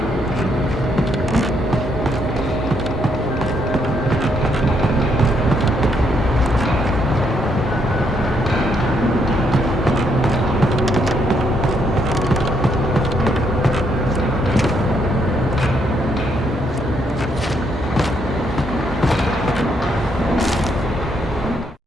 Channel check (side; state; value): both; normal; correlation 0.74